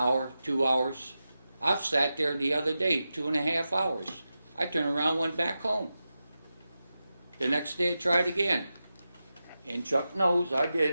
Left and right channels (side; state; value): both; inverted; correlation -0.92